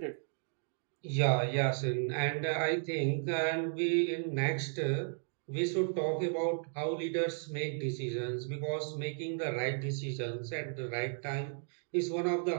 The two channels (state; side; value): silent; left; digital silence